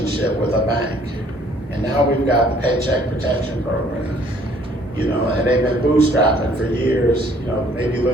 with a bank. And now we've got the Paycheck Protection Program, and they've been bootstrapping for years, maybe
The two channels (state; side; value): normal; both; correlation 0.60